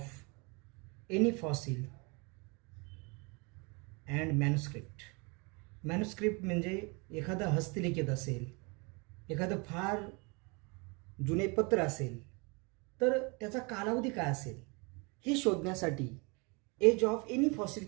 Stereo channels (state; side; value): quieter; left; 30.2 dB